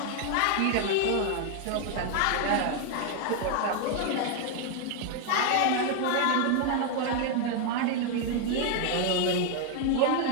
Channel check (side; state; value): both; different; correlation 0.00